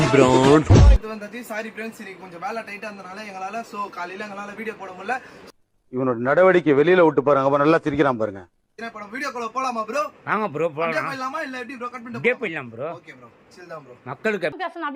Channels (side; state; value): both; identical; correlation 1.00